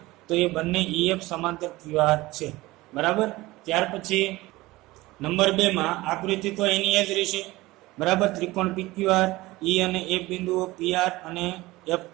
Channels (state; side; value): quieter; left; 19.6 dB